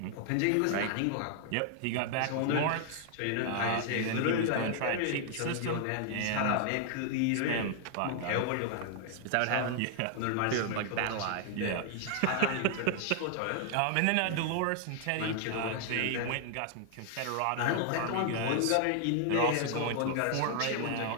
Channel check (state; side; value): different; both; correlation 0.00